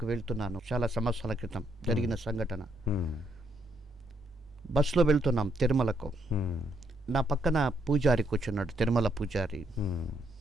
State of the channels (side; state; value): both; normal; correlation 0.74